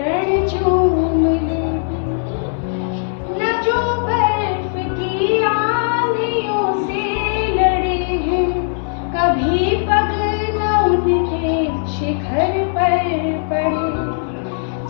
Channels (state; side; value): silent; right; digital silence